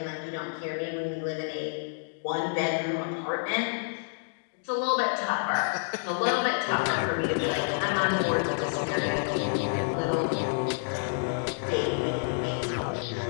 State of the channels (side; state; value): right; silent; digital silence